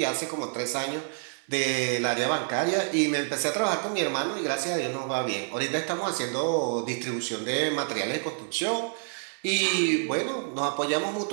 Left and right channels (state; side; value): silent; left; 59 dB below the other